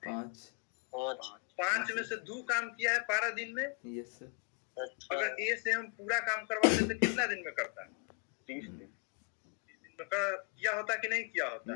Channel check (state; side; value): quieter; right; 39.3 dB